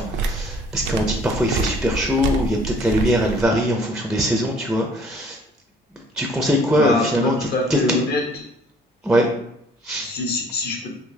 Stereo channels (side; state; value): both; normal; correlation 0.57